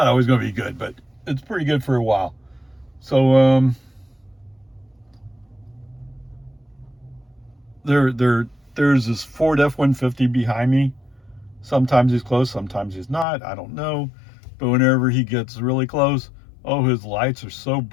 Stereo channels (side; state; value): right; drops out; at 13.2 s